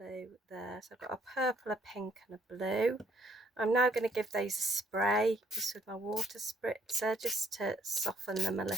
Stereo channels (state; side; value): normal; both; correlation 0.67